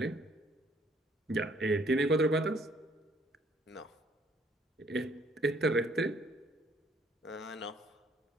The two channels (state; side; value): normal; both; correlation 0.63